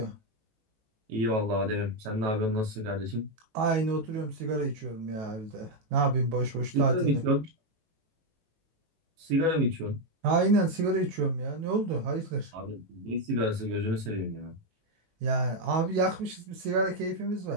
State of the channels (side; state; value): left; late; 18 ms